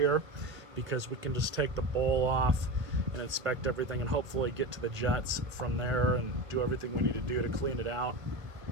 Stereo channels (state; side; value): late; left; 1.5 ms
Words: because we can just take the bowl off and inspect everything and hopefully get to the jets from there and do everything we need to do to clean it out.